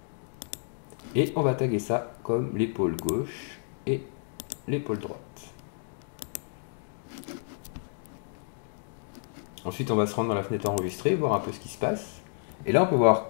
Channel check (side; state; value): right; silent; digital silence